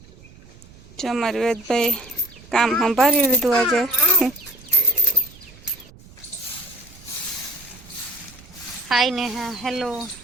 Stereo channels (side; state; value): right; noise; rumble, 22 dB below the sound